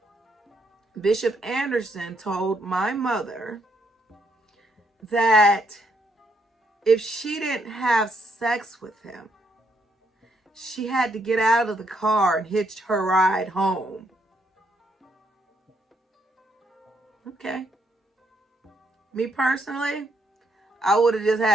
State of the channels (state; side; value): normal; both; correlation 0.74